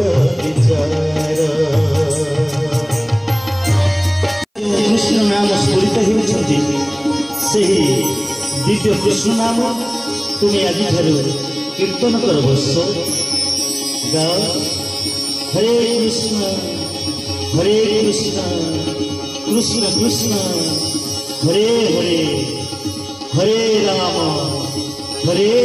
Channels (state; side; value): identical; both; correlation 1.00